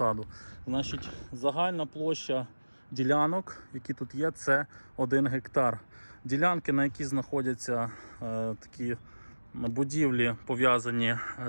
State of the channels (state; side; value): inverted; both; correlation -1.00